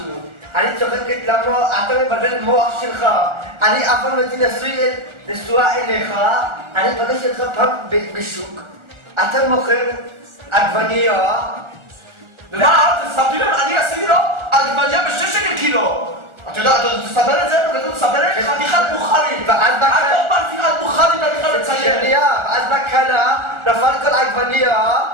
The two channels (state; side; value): late; left; 1.4 ms